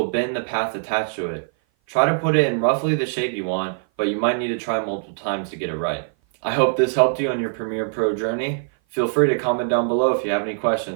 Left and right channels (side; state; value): left; silent; 56 dB below the other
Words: bend the path attached to it. Try to put it in roughly the shape you want, but you might need to try multiple times to get it right. I hope this helped you on your Premiere Pro journey. Feel free to comment down below if you have any